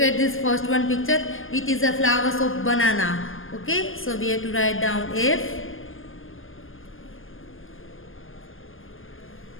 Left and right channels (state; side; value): late; right; 0.59 ms